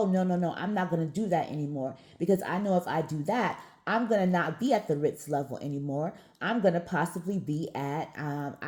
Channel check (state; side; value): identical; both; correlation 1.00